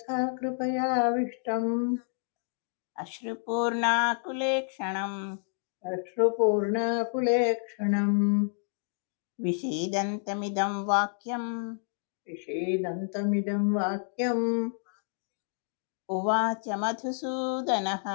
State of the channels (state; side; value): silent; right; 58 dB below the other